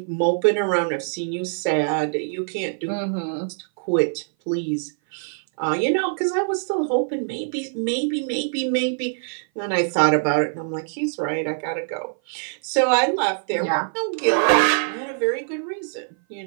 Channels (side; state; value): left; silent; 58 dB below the other